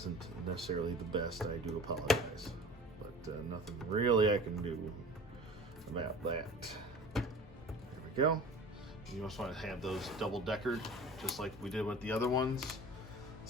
necessarily the best, I do apologize, but nothing really I can do about that. There we go. You just want to have those double-deckered just like we did with the other ones.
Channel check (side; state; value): both; normal; correlation 0.40